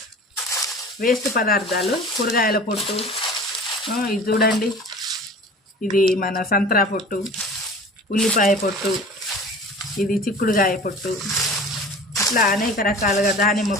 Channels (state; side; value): normal; both; correlation 0.41